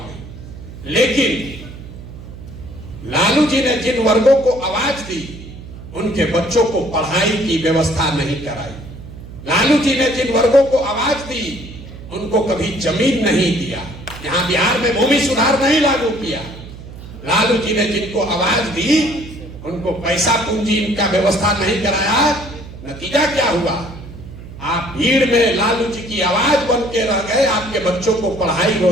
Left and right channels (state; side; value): noise; right; hum, 14 dB below the sound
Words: लेकिन लालू जी ने जिन वर्गों को आवाज दी उनके बच्चों को पढ़ाई की व्यवस्था नहीं कराई। लालू जी ने जिन वर्गों को आवाज दी उनको कभी जमीन नहीं दिया। यहां बिहार में भूमि सुधार नहीं लागू किया। लालू जी ने जिनको आवाज दी उनको पैसा पूंजी इनका व्यवस्था नहीं कराया। नतीजा क्या हुआ? आप भीड़ में लालू जी की आवाज बन के रह गए, आपके बच्चों को पढ़ाई